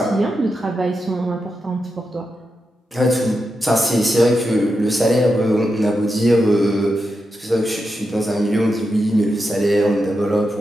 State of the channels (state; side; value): normal; both; correlation 0.87